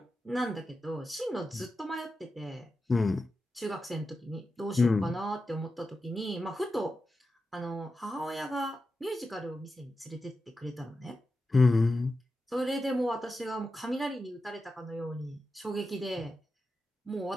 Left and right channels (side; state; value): both; normal; correlation 0.91